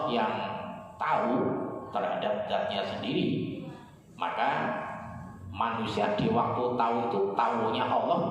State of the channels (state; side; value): identical; both; correlation 1.00